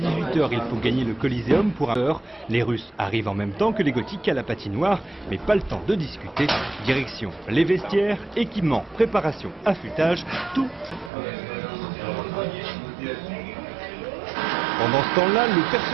il faut gagner le Coliseum pour 1 heure. Les Russes arrivent en même temps que les Gothiques à la patinoire, mais pas le temps de discuter. Direction les vestiaires, équipements, préparation, affûtage, tout. Pendant ce temps-là, le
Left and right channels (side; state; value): left; drops out; at 11.1 s